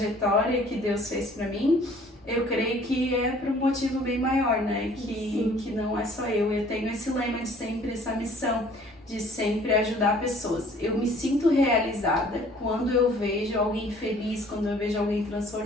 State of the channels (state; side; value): normal; both; correlation 0.55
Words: que Deus fez pra mim, eu creio que é por um motivo bem maior, né? Que não é só eu tenho esse lema de sempre, essa missão de sempre ajudar pessoas. Eu me sinto realizada quando eu vejo alguém feliz, quando eu vejo alguém